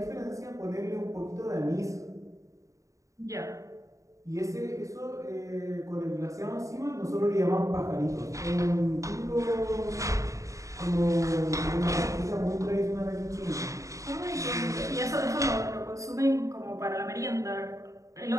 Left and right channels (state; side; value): late; left; 0.16 ms